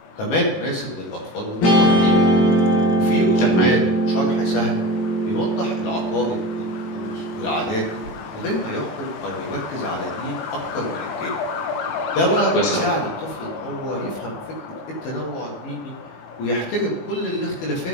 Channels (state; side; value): late; right; 18 ms